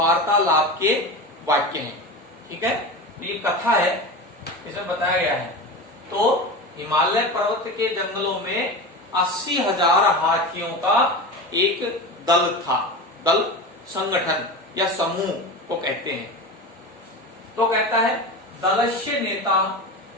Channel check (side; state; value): both; normal; correlation 0.27